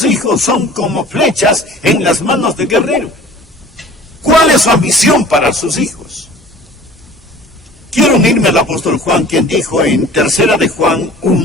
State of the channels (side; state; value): both; normal; correlation 0.46